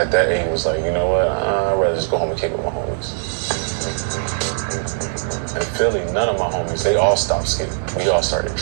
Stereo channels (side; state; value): left; silent; 66 dB below the other